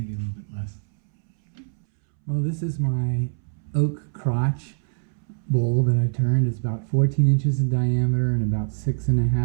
a little bit less. Well, this is my oak crotch bowl that I turned. It's about 14 inches in diameter and about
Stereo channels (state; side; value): silent; left; 63 dB below the other